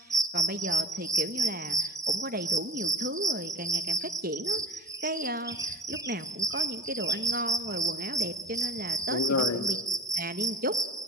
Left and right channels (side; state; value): both; normal; correlation 0.32